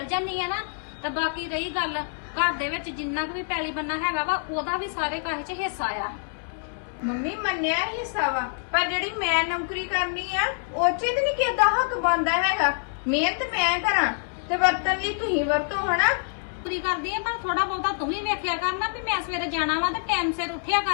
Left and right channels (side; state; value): right; silent; digital silence